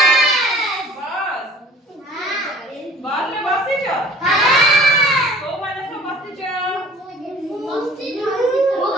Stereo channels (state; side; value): normal; both; correlation 0.47